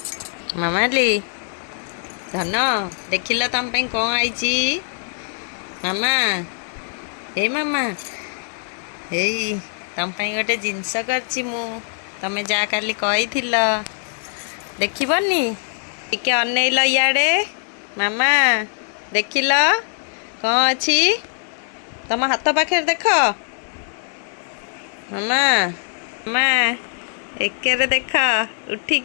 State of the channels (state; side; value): silent; right; digital silence